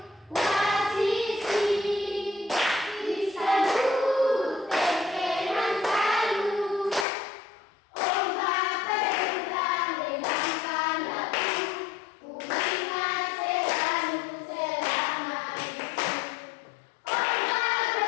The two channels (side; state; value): right; drops out; at 7.1 s